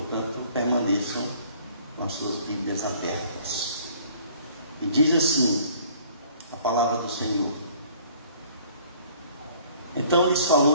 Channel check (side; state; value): both; inverted; correlation -0.55